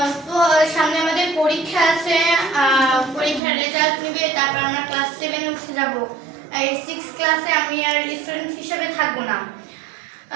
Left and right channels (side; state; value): left; drops out; at 3.4 s